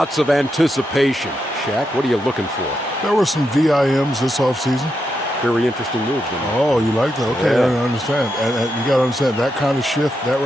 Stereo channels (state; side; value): normal; both; correlation 0.84